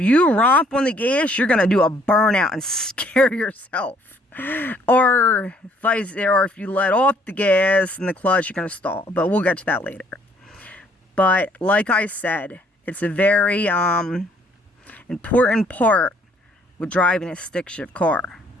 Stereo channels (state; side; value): normal; both; correlation 0.63